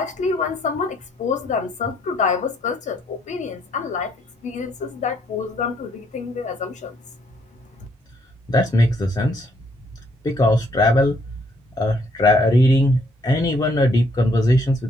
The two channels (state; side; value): normal; both; correlation 0.68